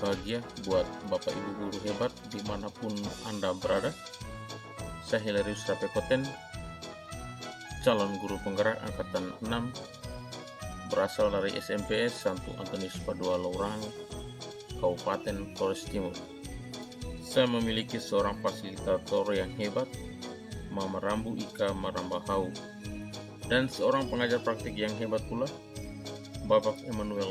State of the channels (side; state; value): both; identical; correlation 1.00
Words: bahagia buat Bapak Ibu guru hebat dimanapun Anda berada. Saya Hilarius Rapekoten, calon guru penggerak Angkatan 6, berasal dari SMPS Santo Antonius Padua Laurang, Kabupaten Flores Timur. Saya memiliki seorang fasilitator yang hebat, Mama Rambu Ika Marambahau, dan seorang pengajar praktik yang hebat pula, Bapak